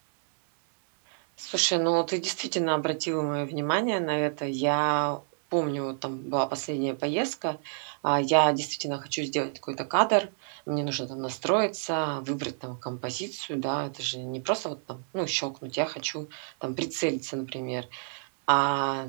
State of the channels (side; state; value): left; silent; 59 dB below the other